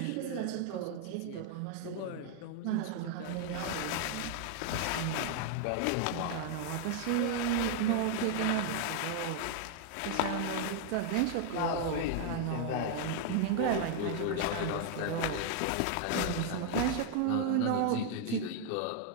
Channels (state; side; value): different; both; correlation 0.00